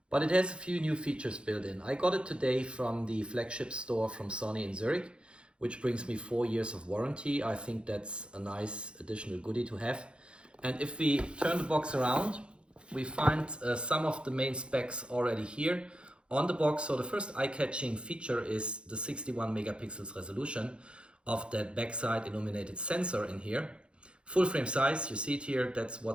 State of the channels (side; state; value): left; late; 0.056 ms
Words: but it has a few new features built in. I got it today from the flagship store from Sony in Zurich, which brings me 4 years of warranty. I think that's a nice additional goodie to have. And if we turn the box around, we find some of the main specs already here on the box. So the first eye-catching feature is the 61 megapixels resolution of that backside illuminated sensor in here. Full frame size, you see it here, that's